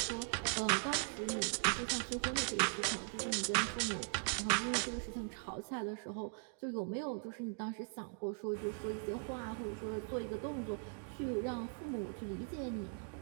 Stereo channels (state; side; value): silent; left; 51 dB below the other